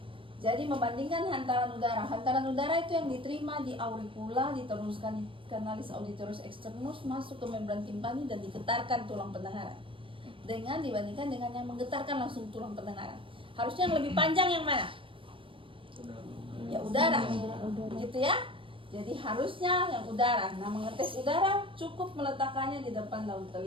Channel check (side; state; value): left; late; 0.25 ms